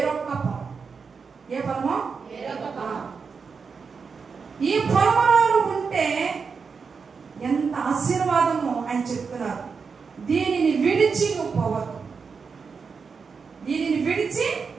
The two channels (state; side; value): quieter; left; 5.4 dB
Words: పొలం. ఏ పొలమో? ఈ పొలంలో ఉంటే ఎంత ఆశీర్వాదమో ఆయన చెప్తున్నారు. దీనిని విడిచి నువ్వు పోవద్దు. దీనిని విడిచి